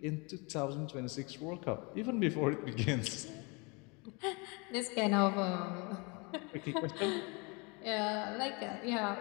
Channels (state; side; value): quieter; right; 29.8 dB